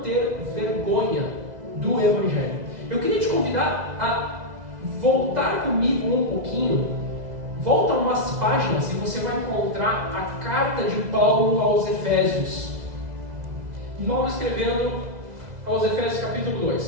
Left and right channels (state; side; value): late; left; 2.0 ms